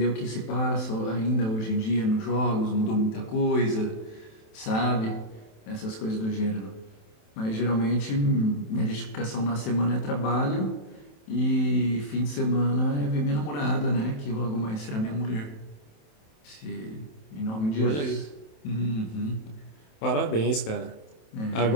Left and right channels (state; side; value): late; right; 27 ms